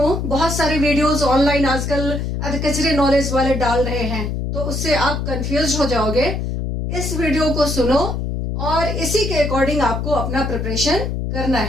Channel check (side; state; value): left; noise; hum, 3 dB below the sound